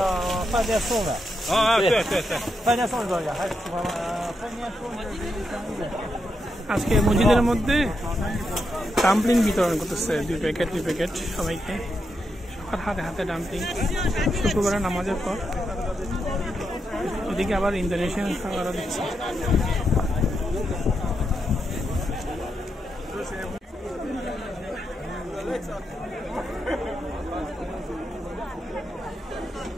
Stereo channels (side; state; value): both; normal; correlation 0.83